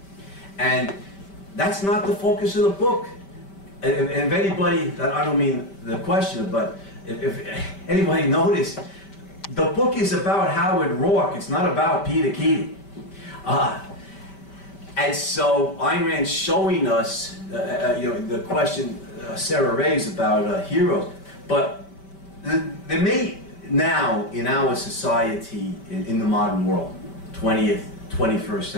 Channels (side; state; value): right; late; 5.1 ms